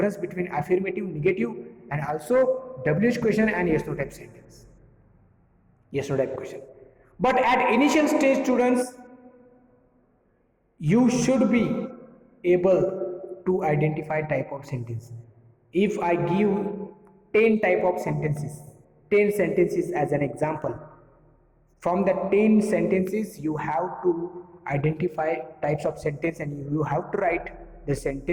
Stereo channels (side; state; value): both; identical; correlation 1.00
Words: between affirmative, negative, and also WH question and yes no type sentence, yes no type question. But at initial stage, students, you should be able to identify type of sentence. If I give 10 type of sentences, 10 sentences as an example, from the 10 sentences you have to identify types of sentence, and you have to write the